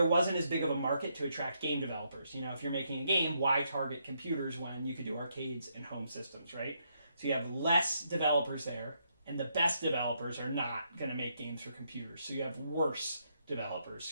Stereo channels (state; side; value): inverted; both; correlation -0.77